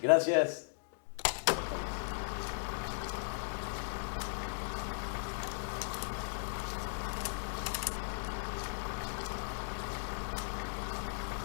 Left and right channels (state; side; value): silent; right; digital silence